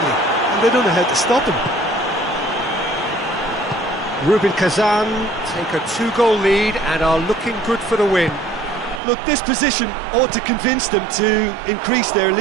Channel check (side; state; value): left; drops out; at 9.0 s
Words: and they don't know how to stop him. Rubin Kazan take a 2-goal lead and are looking good for the win. Look, this position ought to convince them to increase their